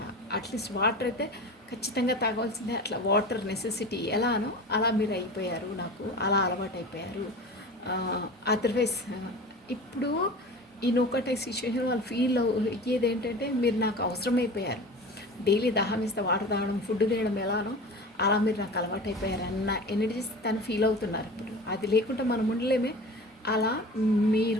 అట్లీస్ట్ వాటర్ అయితే ఖచ్చితంగా తాగవలసిందే. అట్లా వాటర్ నెసెసిటీ ఎలానో అలా మీరు అయిపోయారు, నాకు అలా అలవాటు అయిపోయారు. అదర్వైజ్ ఇప్పుడు ఈ నోకటై సిచ్యువేషన్ వాళ్ళు ఫీల్ అయ్యేది ఏంటంటే, మీరు నాకు అవసరమైపోయారు. డైలీ దాహం వేస్తే వాటర్ తాగడం, ఫుడ్ తినడం ఎలానో అలా మీరు నాకు అలవాటు అయిపోయారు అన్న ఎనర్జీస్ తను ఫీల్ అవుతున్నారు ఇప్పుడు. అది లేకుండా మనం ఉండలేమే, అలా మీరు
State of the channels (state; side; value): normal; both; correlation 0.35